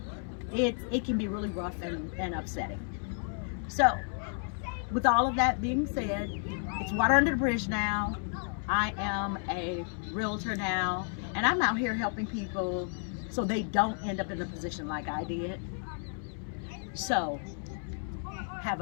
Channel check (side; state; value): right; silent; 56 dB below the other